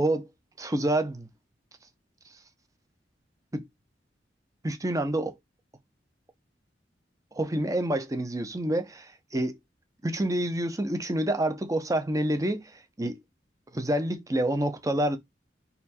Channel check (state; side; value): normal; both; correlation 0.75